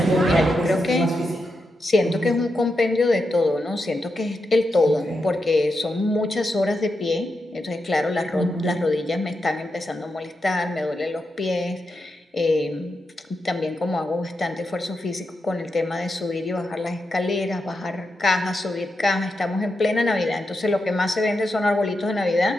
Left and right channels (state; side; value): normal; both; correlation 0.87